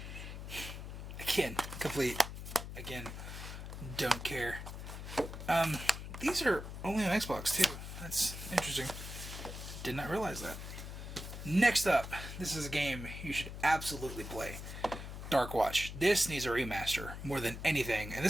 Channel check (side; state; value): left; noise; hum, 9 dB below the sound